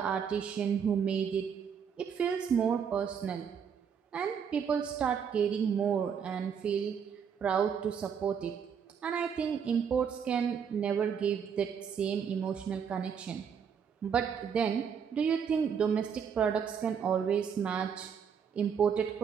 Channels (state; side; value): quieter; left; 7.2 dB